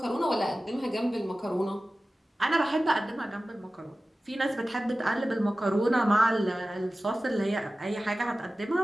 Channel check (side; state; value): both; normal; correlation 0.96